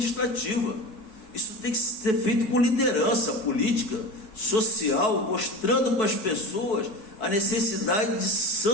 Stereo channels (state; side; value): late; right; 4.6 ms